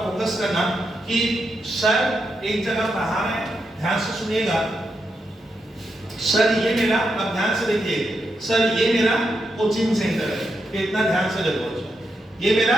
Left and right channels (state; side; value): normal; both; correlation 0.84